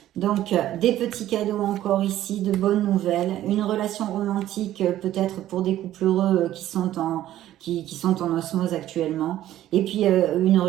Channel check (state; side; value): quieter; left; 13.2 dB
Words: Donc, des petits cadeaux encore ici, de bonnes nouvelles, une relation romantique peut-être pour des couples heureux qui sont en osmose actuellement, et puis une